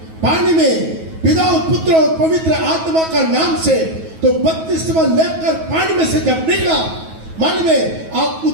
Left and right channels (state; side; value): late; left; 9.3 ms